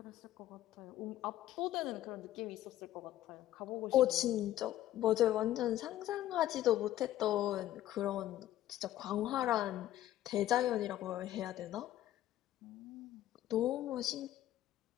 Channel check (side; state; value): right; quieter; 13.5 dB